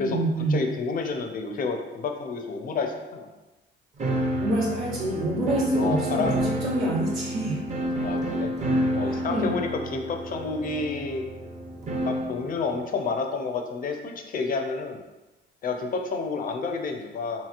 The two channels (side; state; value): both; normal; correlation 0.50